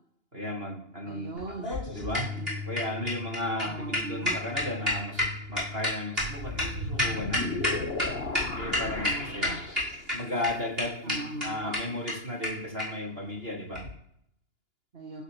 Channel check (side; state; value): left; late; 2.8 ms